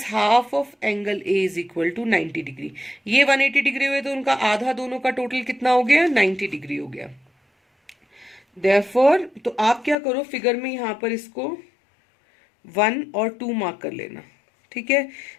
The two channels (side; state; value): right; drops out; at 10.0 s